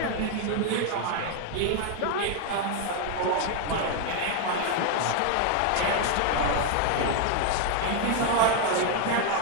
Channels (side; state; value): both; different; correlation 0.01